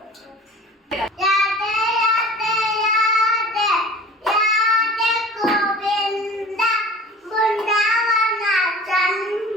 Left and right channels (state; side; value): normal; both; correlation 0.42